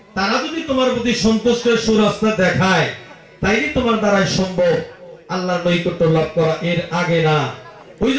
তারা যদি তোমার প্রতি সন্তুষ্টের সুরাস্তা দেখায়, তাইলে তোমার দ্বারাই সম্ভব আল্লাহর নৈকট্য লাভ করা, এর আগে না। ওই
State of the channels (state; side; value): identical; both; correlation 1.00